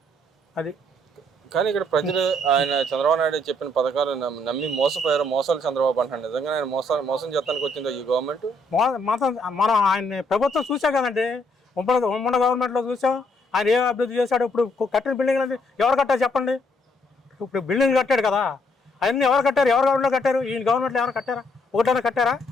అది. కానీ ఇక్కడ ప్రజలు ఆయన చంద్రబాబు నాయుడు చెప్పిన పథకాలు నమ్మి మోసపోయారు. మోసాలు చంద్రబాబు అంటారు. నిజంగా ఆయన మోసం చేస్తానికి వచ్చిందో ఈ గవర్నమెంట్? మనం ఆయన ప్రభుత్వం చూసాం కదండి, ఉమ్మడి గవర్నమెంట్లో చూసాం ఆయన ఏ అభివృద్ధి చేశాడు. ఇప్పుడు కట్టిన బిల్డింగ్లు అంటే ఎవరు కట్టారు చెప్పండి? ఇప్పుడు బిల్డింగ్ కట్టాడు కదా, అవన్నీ ఎవరు కట్టారు? ఎవరు గవర్నమెంట్లో కట్టారు? ఈయన గవర్నమెంట్లో ఎవరు కట్టారా? ఒకటైనా కట్టారా?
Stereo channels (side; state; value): both; normal; correlation 0.70